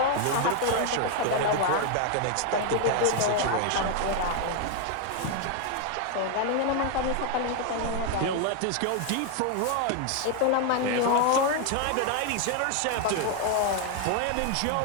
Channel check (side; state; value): both; different; correlation 0.00